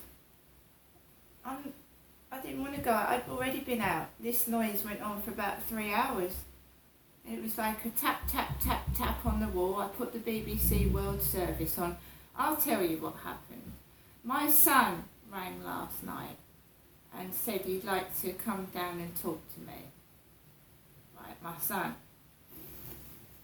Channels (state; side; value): identical; both; correlation 1.00